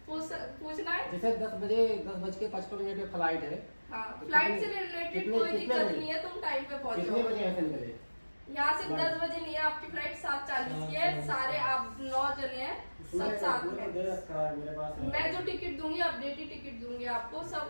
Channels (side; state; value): both; inverted; correlation -1.00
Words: पूछना है? जैसे 10:55 पे फ्लाइट है। हाँ, फ्लाइट से रिलेटेड कोई दिक्कत नहीं है, तुम टाइम पे पहुंचो। कितने बजे ऐसे निकले? यहाँ से 10 बजे नहीं है, आपकी फ्लाइट 7:40 की है। सारे आप 9 जने हैं, सब साथ में। मैं जो टिकट दूंगी, अपडेटेड टिकट दूंगी आपको,